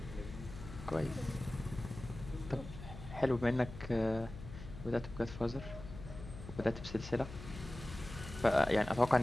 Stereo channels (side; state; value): left; noise; hum, 12 dB below the sound